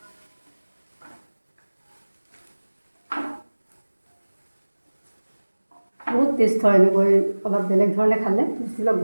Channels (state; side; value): inverted; both; correlation -1.00